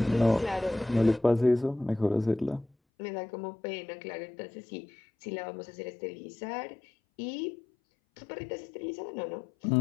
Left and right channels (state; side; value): drops out; right; at 2.7 s